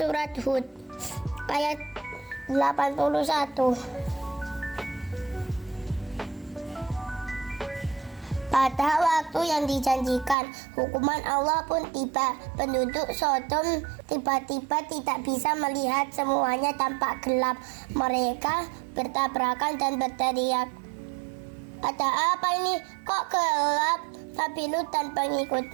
Hud ayat 81. Pada waktu yang dijanjikan, hukuman Allah pun tiba. Penduduk Sodom tiba-tiba tidak bisa melihat, semuanya tampak gelap. Mereka bertabrakan dan berteriak, "Ada apa ini? Kok gelap?" Nabi Lut dan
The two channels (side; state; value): left; drops out; at 10.4 s